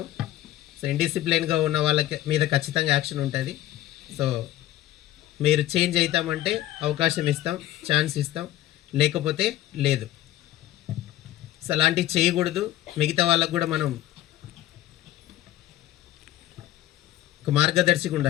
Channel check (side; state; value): right; quieter; 14.3 dB